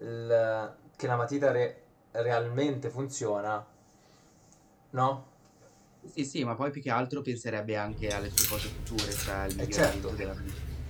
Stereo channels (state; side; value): identical; both; correlation 1.00